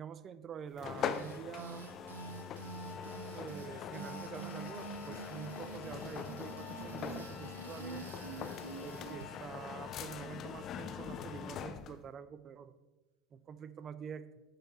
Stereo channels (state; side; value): normal; both; correlation 0.39